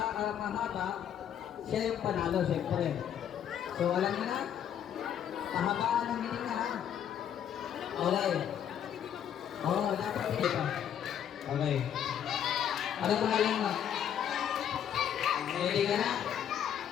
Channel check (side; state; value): right; quieter; 9.5 dB